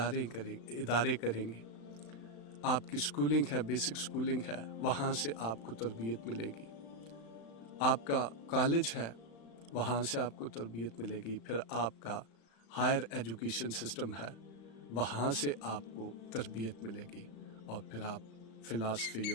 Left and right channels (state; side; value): late; right; 35 ms